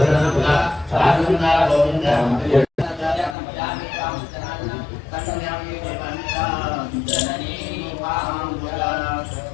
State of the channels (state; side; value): drops out; right; at 3.4 s